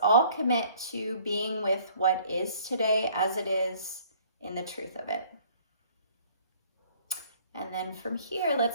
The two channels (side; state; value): both; inverted; correlation -0.57